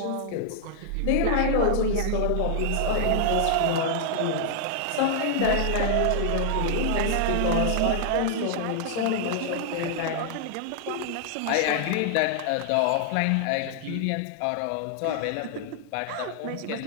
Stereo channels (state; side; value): different; both; correlation 0.00